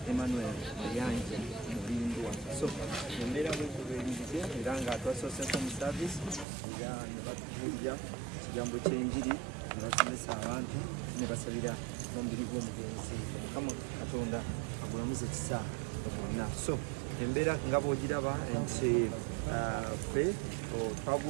Emmanuel Yanja Mubindwa so embera bwekubeeririze era nga atwasosesa mu service era ne batubuulira ekigambo ky'enjiri ne basomesa abantu ne basabira n'omubiri gw'omugenzi Mukama Katonda agulamuze ekisaa bonna so embera nga bw'ogiraba nti ffe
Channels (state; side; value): drops out; left; at 6.5 s